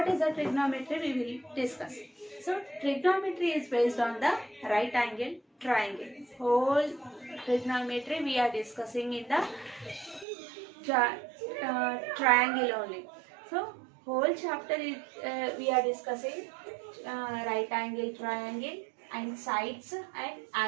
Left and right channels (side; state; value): left; drops out; at 10.2 s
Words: is the trigonometry we will discuss. So trigonometry is based on the right angle triangle. Whole trigonometry we are discussing in the triangle only. So whole chapter is we are discussing right angle triangle and sides and